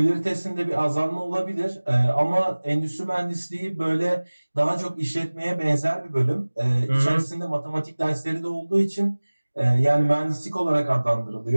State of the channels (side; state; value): both; inverted; correlation -1.00